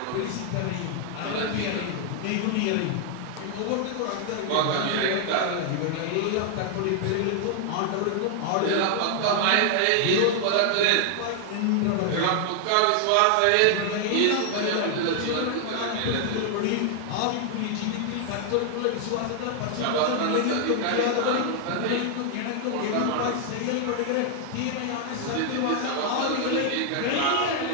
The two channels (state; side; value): different; both; correlation 0.00